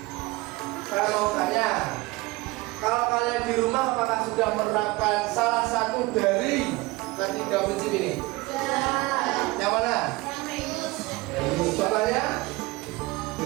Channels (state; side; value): quieter; left; 21.9 dB